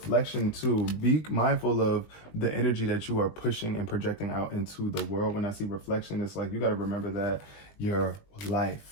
too. Be mindful of the energy that you are pushing and projecting out into the world. When I see reflection, it's like you got to remember that your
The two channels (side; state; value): right; late; 20 ms